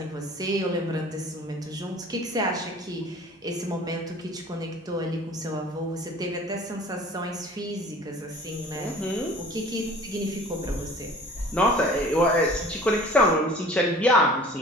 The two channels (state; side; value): normal; both; correlation 0.46